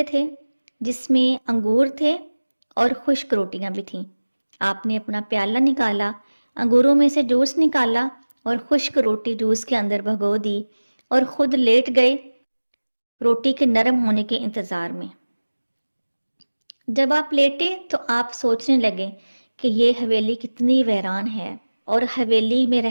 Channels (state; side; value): inverted; both; correlation -1.00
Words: تھے جس میں انگور تھے اور خشک روٹیاں بھی تھیں۔ آپ نے اپنا پیالہ نکالا، انگوروں میں سے جوس نکالا اور خشک روٹی جوس کے اندر بھگو دی اور خود لیٹ گئے روٹی کے نرم ہونے کے انتظار میں۔ جب آپ لیٹے تو آپ سوچنے لگے کہ یہ حویلی کتنی ویران ہے اور حویلی میں